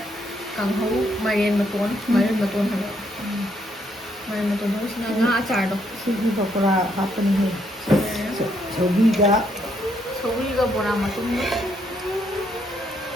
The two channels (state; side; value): normal; both; correlation 0.73